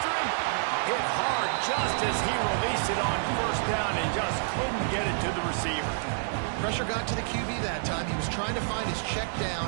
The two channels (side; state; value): left; silent; 59 dB below the other